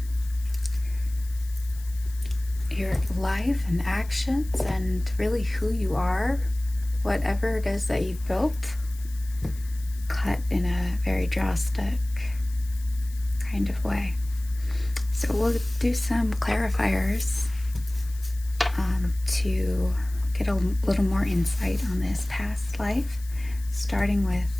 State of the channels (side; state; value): left; noise; hiss, 21 dB below the sound